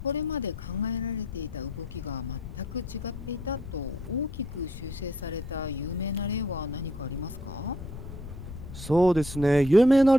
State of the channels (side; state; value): left; noise; rumble, 10 dB below the sound